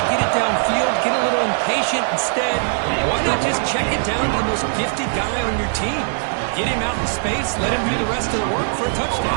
get it downfield, get a little impatient. Instead, why not just check it down to the most gifted guy on your team? Get him out in space, let him do the rest of the work for a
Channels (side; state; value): left; silent; 66 dB below the other